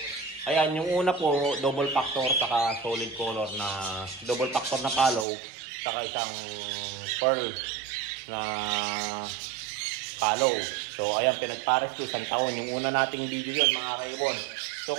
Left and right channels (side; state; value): left; drops out; at 5.2 s